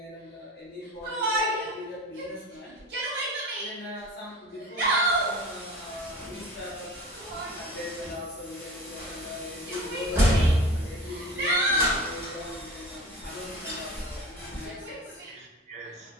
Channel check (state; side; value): normal; both; correlation 0.37